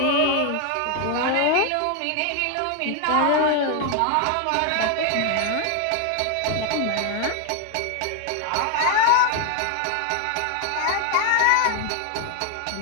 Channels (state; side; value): different; both; correlation 0.01